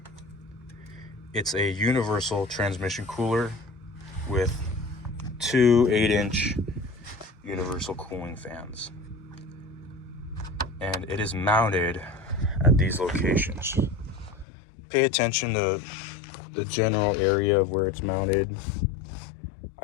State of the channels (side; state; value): right; drops out; at 14.5 s